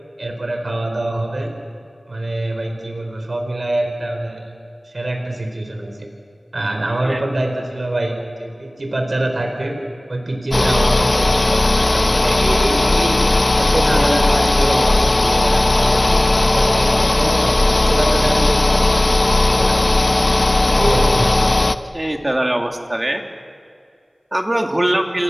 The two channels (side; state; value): both; normal; correlation 0.98